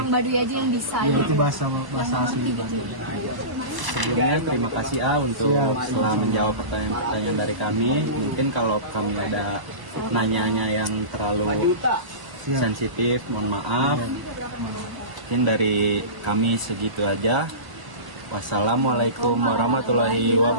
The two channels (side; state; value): left; late; 1.0 ms